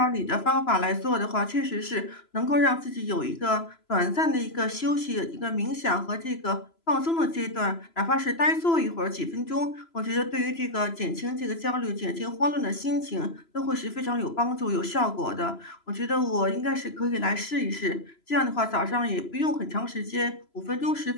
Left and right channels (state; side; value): late; right; 3.0 ms